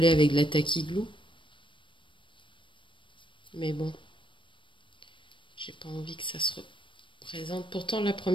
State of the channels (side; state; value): right; late; 0.24 ms